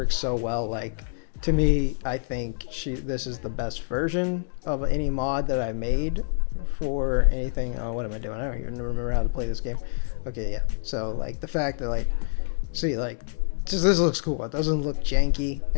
so well. Like, to me, I think this is the best version of any mod that I made for anything. Oh, what am I doing? I don't even remember how to play this game. Okay, yeah. So like the fact that like, see, like just this looks cool. It doesn't look janky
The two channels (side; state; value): right; silent; digital silence